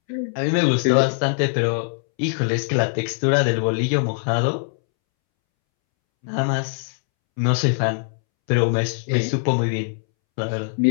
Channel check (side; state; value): right; silent; 64 dB below the other